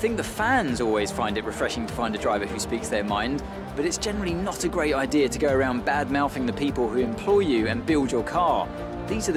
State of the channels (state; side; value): identical; both; correlation 1.00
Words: the fans always find it refreshing to find a driver who speaks their mind, but it's generally not a great idea to go around bad-mouthing the people who employ you and build your car. These are